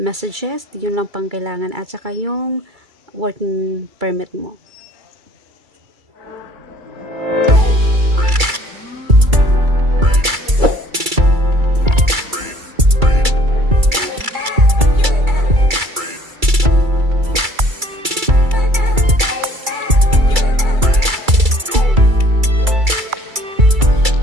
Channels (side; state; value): left; late; 2.3 ms